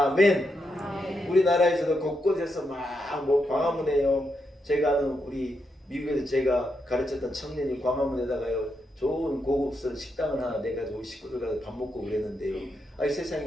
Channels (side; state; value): both; normal; correlation 0.82